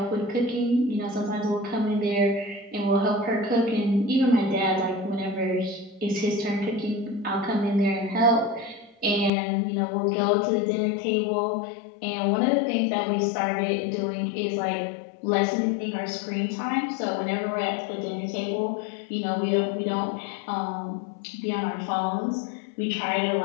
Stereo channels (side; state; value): right; drops out; at 9.3 s